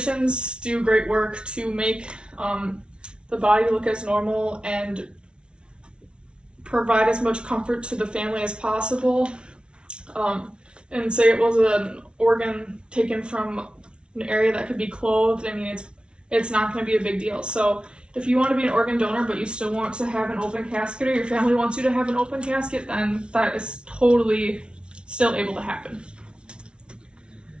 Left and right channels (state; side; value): late; left; 0.057 ms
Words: do great work to make the body look as normal and provide as much comfort to the family as possible. And say it was an organ taken from an area that could be clothed, I mean, it's not going to be a big deal. So if you want to be an organ donor but you still want to have an open casket, or your family wants you to have an open casket, then that is totally still able to happen.